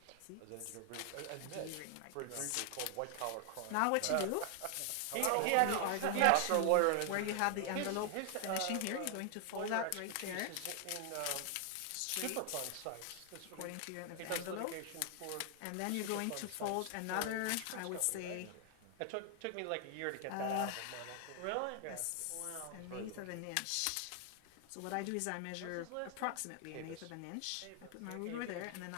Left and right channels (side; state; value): both; different; correlation 0.00